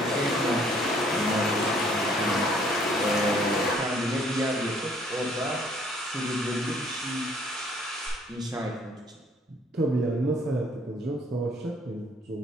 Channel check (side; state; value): both; normal; correlation 0.61